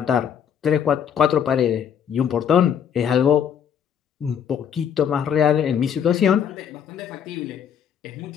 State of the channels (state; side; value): quieter; right; 8.3 dB